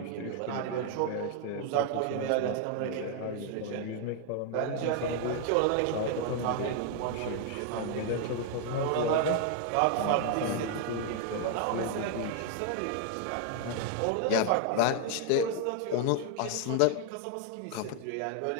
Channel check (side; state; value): both; different; correlation 0.00